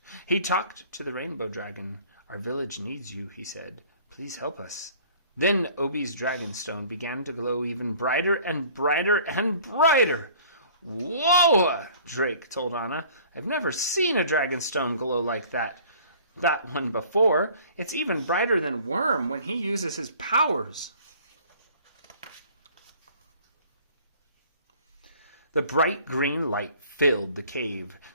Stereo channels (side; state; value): both; inverted; correlation -0.51